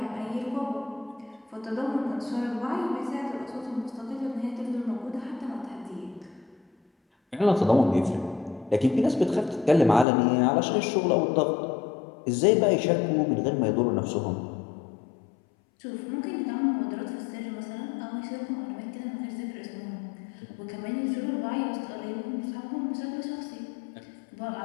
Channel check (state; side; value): drops out; right; at 10.1 s